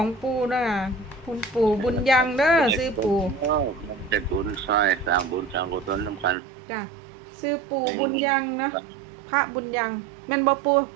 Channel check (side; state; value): left; drops out; at 6.4 s